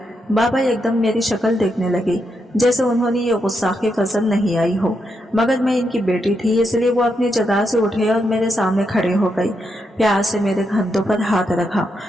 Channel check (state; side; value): normal; both; correlation 0.82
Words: बाबा एकदम मेरी शक्ल देखने लगे, जैसे उन्होंने ये गुस्साखी पसंद नहीं आई हो, मगर मैं इनकी बेटी थी, इसलिए वो अपनी जगह से उठे और मेरे सामने खड़े हो गई। प्यार से मेरे कंधों पर हाथ रखा